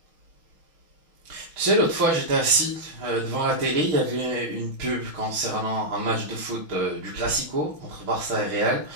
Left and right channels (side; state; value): left; late; 5.9 ms